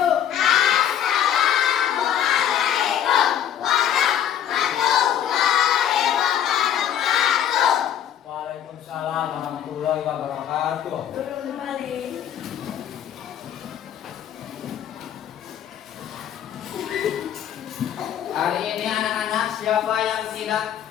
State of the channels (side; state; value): right; quieter; 10.0 dB